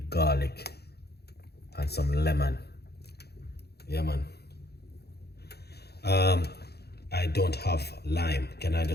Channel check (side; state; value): right; late; 0.47 ms